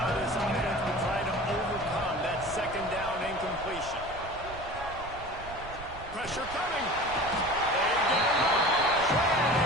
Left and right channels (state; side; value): noise; right; rumble, 15 dB below the sound